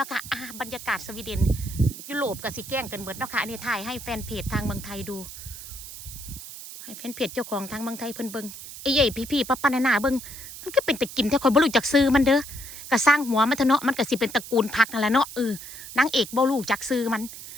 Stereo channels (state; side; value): noise; right; hiss, 12 dB below the sound